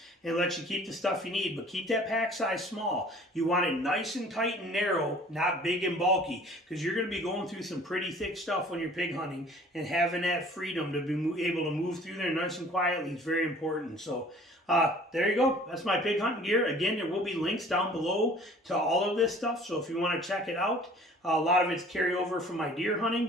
and lets you keep the stuff you need, but keep that pack size small. You want it nice and tight and narrow, not big and bulky, because you're going to be going through some pretty thick stuff when you're pig hunting, and having that freedom to be able to move through there nice and quietly is very important. So there you go. That's my pig hunting gear. Again, there will be links down below to all of this stuff, so if you want to check it out, a lot of it's carryover from my deer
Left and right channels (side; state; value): both; normal; correlation 0.50